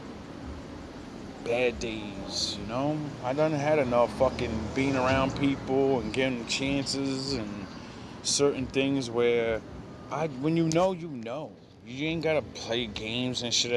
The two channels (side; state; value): both; identical; correlation 1.00